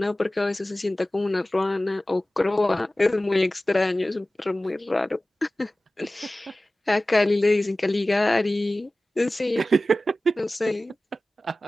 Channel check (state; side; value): normal; both; correlation 0.96